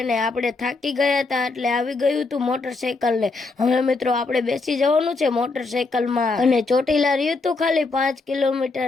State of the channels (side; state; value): right; quieter; 3.8 dB